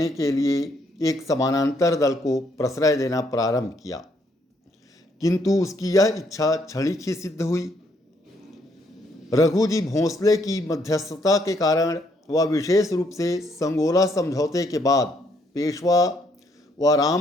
के लिए एक समानांतर दल को प्रश्रय देना प्रारंभ किया, किंतु उसकी यह इच्छा क्षणिक ही सिद्ध हुई। रघुजी भोंसले की मध्यस्थता के कारण वह विशेष रूप से संगोला समझौते के बाद पेशवा व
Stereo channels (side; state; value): both; normal; correlation 0.71